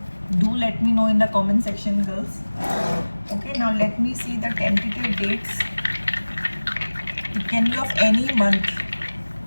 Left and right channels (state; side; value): inverted; both; correlation -1.00